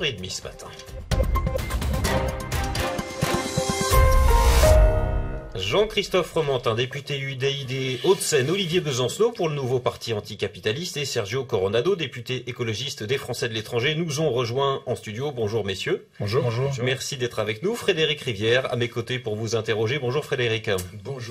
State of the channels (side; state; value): both; identical; correlation 1.00